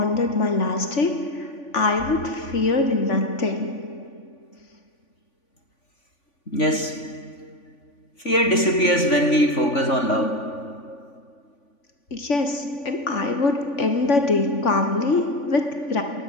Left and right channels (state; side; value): late; right; 3.5 ms